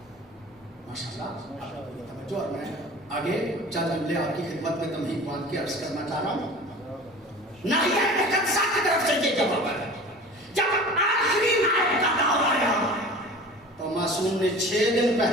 ماشاءاللہ. توجہ. اور میں آگے چند جملے آپ کی خدمت میں تمہید باندھ کے عرض کرنا چاہ رہا ہوں. ناحیہ مقدسہ کی طرف سے یہ جواب ہے. جب آخری نائب کا دور آیا تو معصوم نے 6 دن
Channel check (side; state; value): both; normal; correlation 0.40